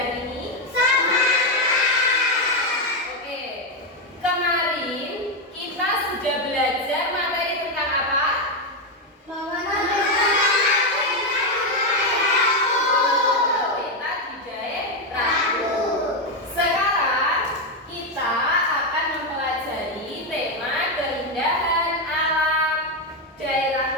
ini? Oke. Kemarin kita sudah belajar materi tentang apa? Peta dijahit raku. Sekarang kita akan mempelajari tema keindahan alam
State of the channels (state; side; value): normal; both; correlation 0.06